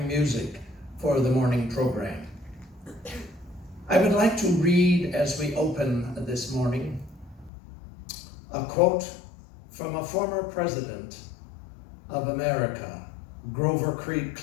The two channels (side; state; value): right; drops out; at 7.5 s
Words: music for the morning program. I would like to read, as we open this morning, a quote from a former president of America, Grover